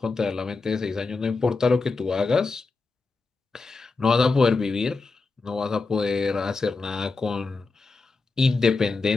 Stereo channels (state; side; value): quieter; right; 4.0 dB